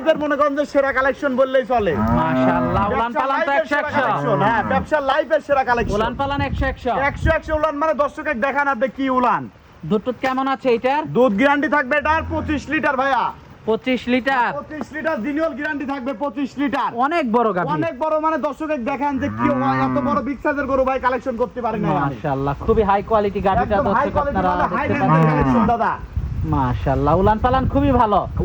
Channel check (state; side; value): identical; both; correlation 1.00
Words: মনে করেন যে সেরা কালেকশন বললেই চলে। মাশাআল্লাহ, উলান পালান তো 100 হ্যাঁ ব্যবসার লাইফের সেরা কালেকশন। উলান পালান 100 100 উলান, মানে দর্শককে দেখান আপনি কি উলান। দুধ কেমন আছে এটার? দুধ গ্যারান্টি থাকবে এটার 25 লিটার ভাইয়া। 25 লিটার। 25 লিটার জিনিয়াল গ্যারান্টি থাকবে 25 লিটার। অনেক বড় গাভি, অনেক বড়, মানে দর্শককে দেখান যে কি এত বড় বিগ সাইজের গরু ভাই কালেকশন করতে পারি না আমি। মাশাআল্লাহ, খুবই হাই কোয়ালিটি গাভিটা একদম হাই দর্শক কোয়ালিটি, আপনারা মানে হাই দেখতে রেঞ্জের কালেকশন পাচ্ছেন। দাদা। মাশাআল্লাহ, উলান পালান খুবই ভালো।